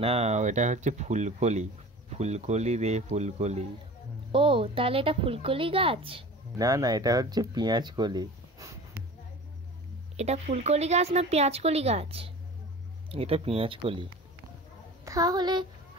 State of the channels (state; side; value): normal; both; correlation 0.38